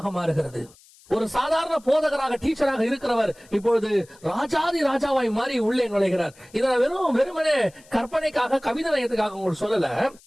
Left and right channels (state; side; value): noise; left; hiss, 27 dB below the sound